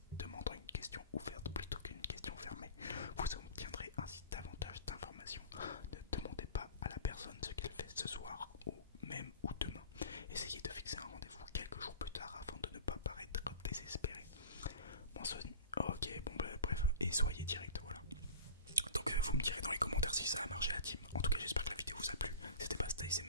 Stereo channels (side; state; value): both; inverted; correlation -0.38